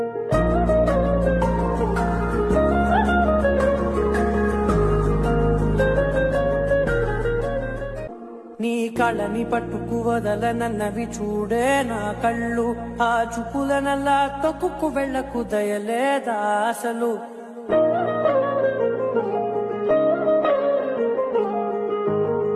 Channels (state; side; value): identical; both; correlation 1.00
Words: నీ కళని పట్టుకు వదలనన్నవి చూడే నా కళ్ళు, ఆ చూపులనల్లా తొక్కుకు వెళ్ళకు దయలేదా అసలు.